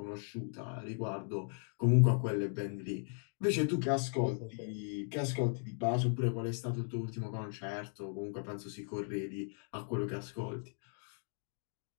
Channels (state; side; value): silent; right; 53 dB below the other